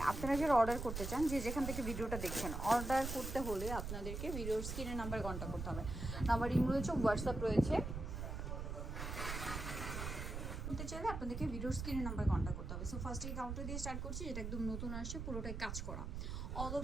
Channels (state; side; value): noise; right; rumble, 5 dB below the sound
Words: আপনারা যারা অর্ডার করতে চান, যে যেখান থেকে ভিডিওটা দেখছেন, অর্ডার করতে হলে আপনাদেরকে ভিডিওর স্ক্রিনের নাম্বার কন্ট্যাক্ট করতে হবে। নাম্বার ইমেল রয়েছে, হোয়াটসঅ্যাপ রয়েছে। করতে চাইলে আপনাদেরকে ভিডিওর স্ক্রিনের নাম্বার কন্ট্যাক্ট করতে হবে। সো ফার্স্ট এই গাউনটা দিয়ে স্টার্ট করছি, যেটা একদম নতুন আসছে, পুরোটাই কাজ করা, অল